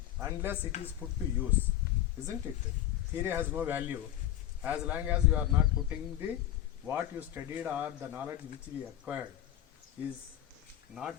unless it is put to use, isn't it? Theory has no value as long as you are not putting the what you studied or the knowledge which we acquired is not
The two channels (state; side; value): quieter; right; 12.3 dB